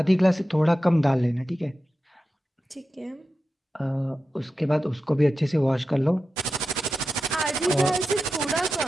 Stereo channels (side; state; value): both; normal; correlation 0.91